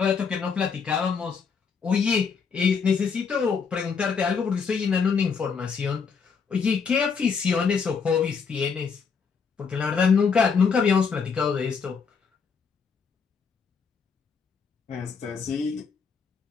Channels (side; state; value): right; quieter; 5.8 dB